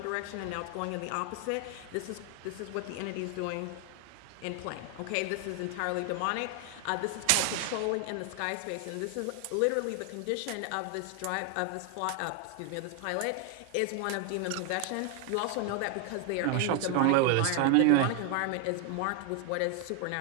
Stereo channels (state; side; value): different; both; correlation 0.00